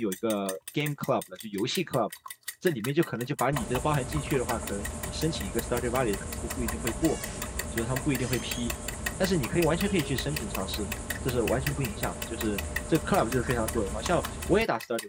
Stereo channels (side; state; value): both; identical; correlation 1.00